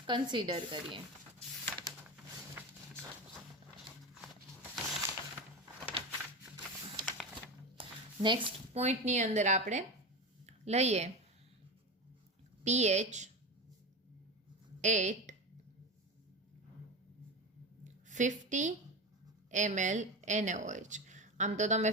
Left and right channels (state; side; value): normal; both; correlation 0.22